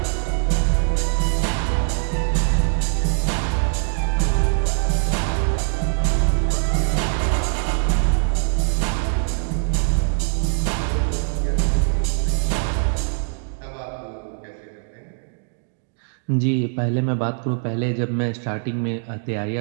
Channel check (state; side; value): silent; left; 64 dB below the other